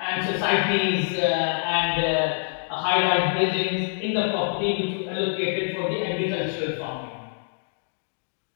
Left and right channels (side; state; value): right; silent; digital silence